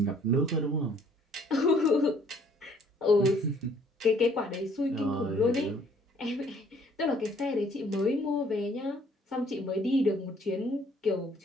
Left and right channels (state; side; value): normal; both; correlation 0.60